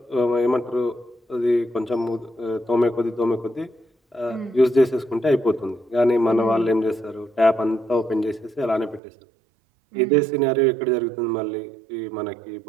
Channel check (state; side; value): drops out; left; at 9.0 s